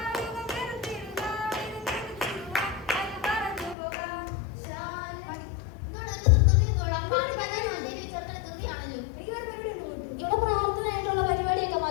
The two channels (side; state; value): right; drops out; at 3.8 s